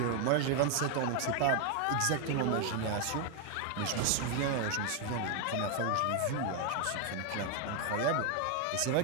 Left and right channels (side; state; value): both; different; correlation 0.01